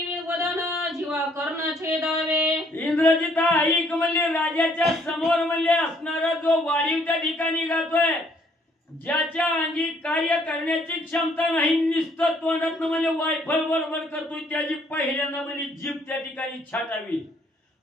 वदन जीवा कर्ण छेदावे. इंद्रजिता ऐक म्हणजे राजाच्या समोर म्हणजे असणारा जो वाढीव त्या ठिकाणी गातोय, ज्याच्या अंगी कार्य करण्याची क्षमता नाही, नुसतं तोंडातनं म्हणजे वायफळ बडबड करतोय, त्याची पहिल्यांदा म्हणजे जीभ त्या ठिकाणी छाटावी.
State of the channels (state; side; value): normal; both; correlation 0.65